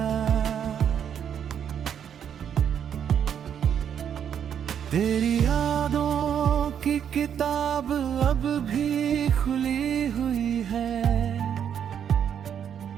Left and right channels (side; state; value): left; quieter; 8.6 dB